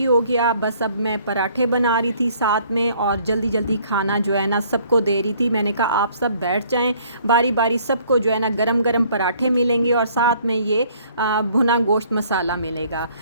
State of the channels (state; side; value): inverted; both; correlation -0.60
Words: हो गया। बस अब मैं पराठे बना रही थी साथ में और जल्दी जल्दी खाना जो है ना सबको दे रही थी। मैंने कहा आप सब बैठ जाएं, बारी बारी सबको जो है ना गरम गरम पराठे मिलेंगे और साथ में ये भुना गोश्त मसाला मिलेगा।